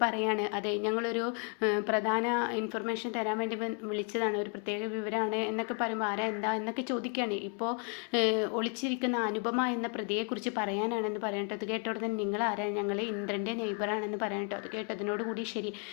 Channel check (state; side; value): quieter; right; 36.0 dB